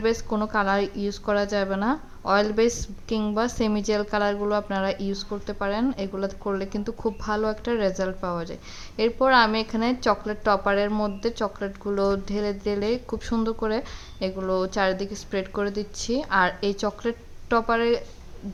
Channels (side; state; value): both; identical; correlation 1.00